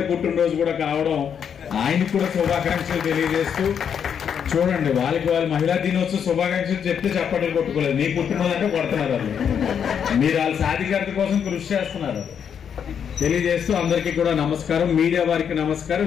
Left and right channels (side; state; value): right; quieter; 7.8 dB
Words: పుట్టినరోజు కూడా కావడం, ఆయనకు కూడా శుభాకాంక్షలు తెలియజేస్తూ, చూడండి వాళ్ళకి వాళ్ళు మహిళా దినోత్సవం శుభాకాంక్షలు చెప్తే చప్పట్లు కొట్టుకోలేదు. మీ పుట్టినరోజు అంటే కొడుతున్నారు వాళ్ళు, మీరు వాళ్ళ సాధికారత కోసం కృషి చేస్తున్నారు తెలియజేస్తూ అందరికీ కూడా నమస్కారం. మీడియా వారికి